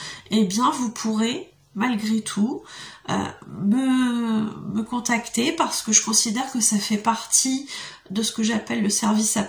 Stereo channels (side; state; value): both; identical; correlation 1.00